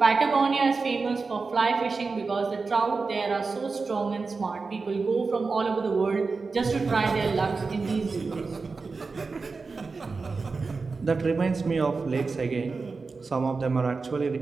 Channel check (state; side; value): quieter; left; 4.3 dB